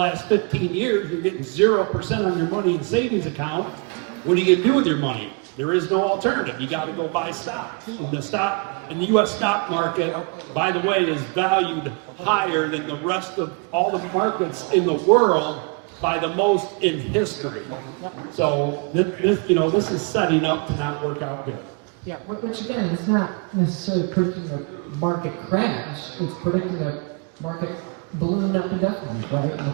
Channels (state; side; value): quieter; left; 33.6 dB